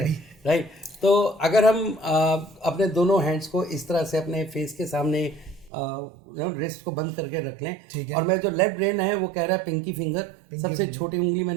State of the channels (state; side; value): drops out; left; at 5.7 s